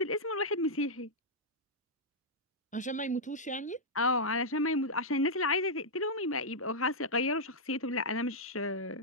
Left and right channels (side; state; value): both; normal; correlation -0.07